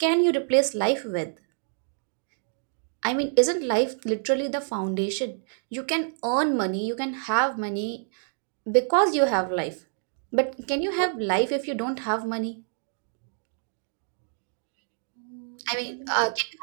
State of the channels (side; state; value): left; silent; 60 dB below the other